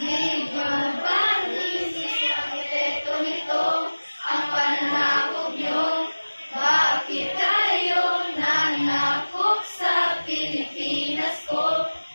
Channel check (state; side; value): inverted; both; correlation -1.00